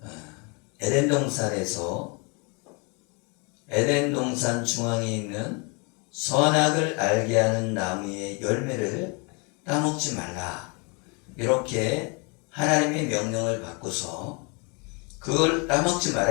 에덴 동산에서 에덴 동산 중앙에 있는 선악을 알게 하는 나무의 열매를 따먹지 말라, 이렇게 하나님의 명령을 받고서 그걸 따먹지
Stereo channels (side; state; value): right; quieter; 32.2 dB